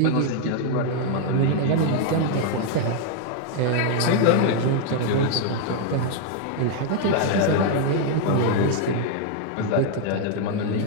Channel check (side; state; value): both; different; correlation 0.00